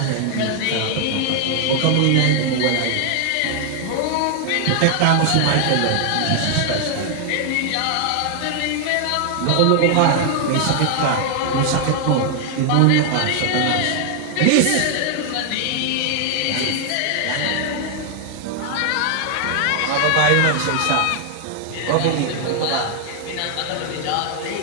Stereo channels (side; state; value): both; different; correlation 0.00